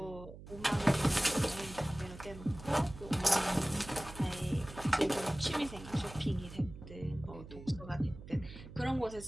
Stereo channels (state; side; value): noise; right; hum, 15 dB below the sound